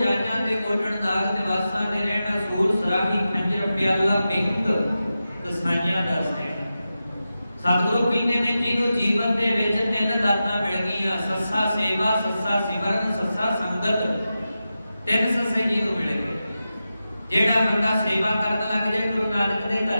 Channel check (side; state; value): both; inverted; correlation -0.92